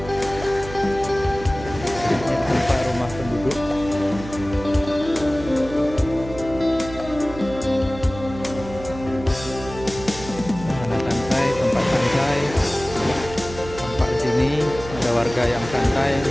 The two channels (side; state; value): right; noise; hum, 13 dB below the sound